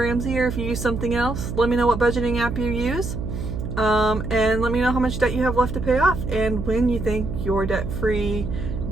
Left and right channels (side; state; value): right; noise; hum, 5 dB below the sound